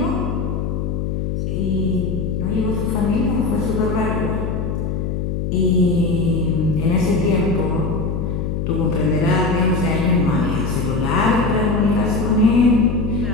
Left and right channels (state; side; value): noise; left; hum, 2 dB below the sound